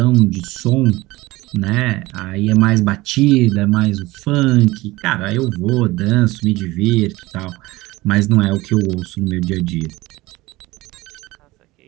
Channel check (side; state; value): left; quieter; 19.8 dB